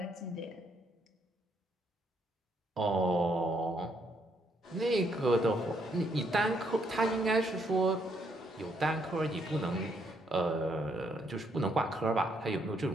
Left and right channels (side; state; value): both; normal; correlation 0.73